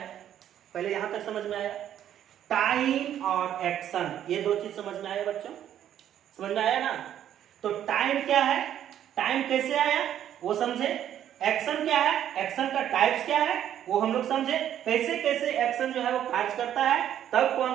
पहले यहाँ तक समझ में आया? टाइम और एक्शन, ये दो चीज समझ में आया बच्चों? समझ में आया ना? तो टाइम क्या है, टाइम कैसे आया वो समझे, एक्शन क्या है, एक्शन का टाइप्स क्या है वो हम लोग समझे, कैसे कैसे एक्शन जो है वो कार्य करता है, तब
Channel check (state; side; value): quieter; left; 10.6 dB